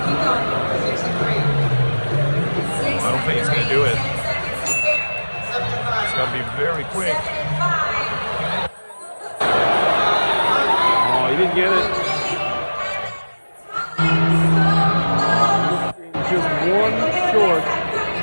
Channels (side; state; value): both; inverted; correlation -1.00